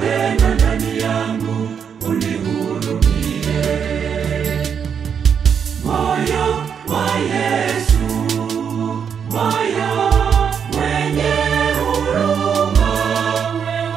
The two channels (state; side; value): quieter; left; 7.3 dB